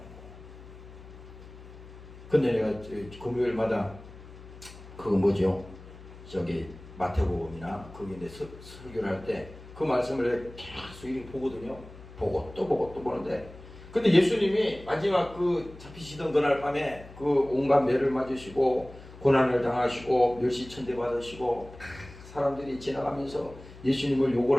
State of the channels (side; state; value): left; noise; hum, 17 dB below the sound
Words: 근데 내가 금요일마다 그거 뭐죠? 저기 마태복음이나 거기 내 설교를 할 때 그 말씀을 계속 이렇게 보거든요. 보고 또 보는데 근데 예수님이 마지막 그 잡히시던 그날 밤에 그 온갖 매를 맞으시고 고난을 당하시고 멸시천대 받으시고 사람들이 지나가면서 예수님을 욕을